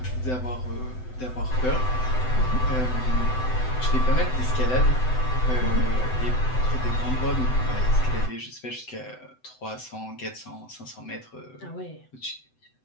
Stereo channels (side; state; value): right; late; 7.9 ms